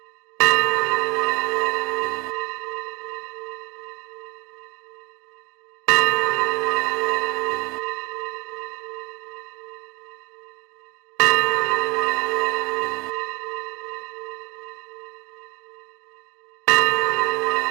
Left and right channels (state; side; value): quieter; left; 25.9 dB